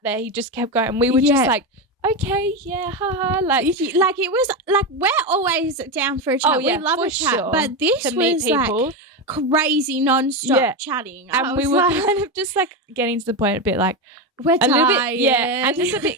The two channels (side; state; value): both; normal; correlation 0.14